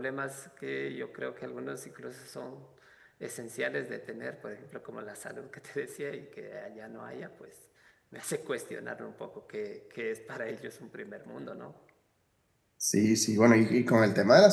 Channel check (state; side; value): identical; both; correlation 1.00